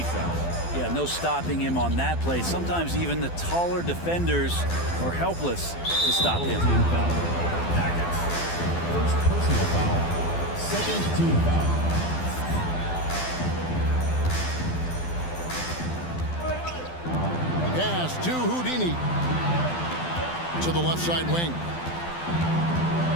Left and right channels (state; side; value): late; right; 12 ms